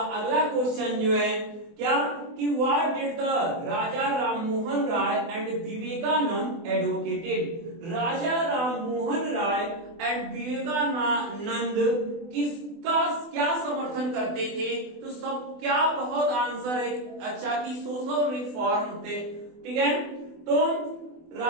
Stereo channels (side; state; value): left; late; 24 ms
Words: अगला क्वेश्चन जो है क्या कि what did the Raja Rammohan Roy and Vivekananda advocated, Raja Rammohan Roy and Vivekananda किसका क्या समर्थन करते थे? तो सब क्या बहुत आंसर है अच्छा कि सोशल रिफॉर्म थे। ठीक है, तो